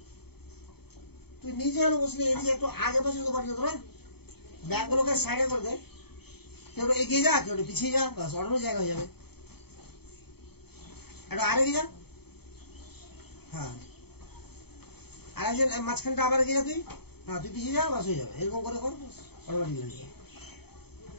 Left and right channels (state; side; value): late; right; 0.97 ms